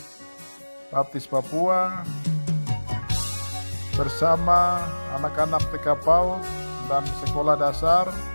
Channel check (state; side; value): inverted; both; correlation -1.00